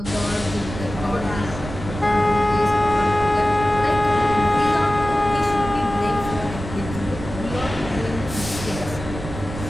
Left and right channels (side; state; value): right; noise; rumble, 9 dB below the sound